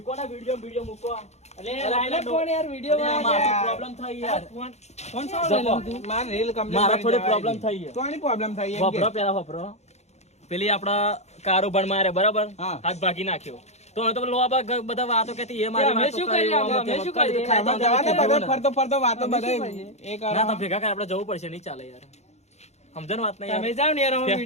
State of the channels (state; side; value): late; right; 0.32 ms